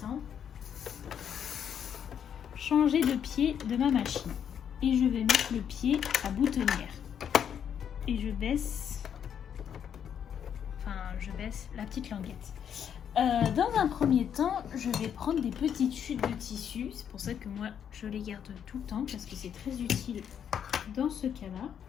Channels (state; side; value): quieter; right; 8.5 dB